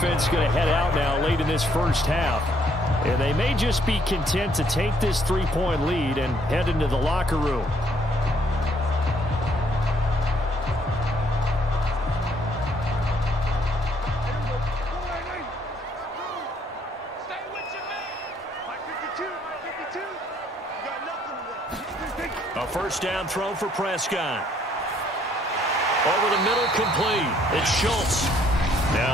going to head out now late in this first half. And they may just be content to take this 3-point lead and head into the locker room. A first down throw for Prescott. Over the middle, complete. It's Schultz.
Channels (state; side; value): normal; both; correlation 0.67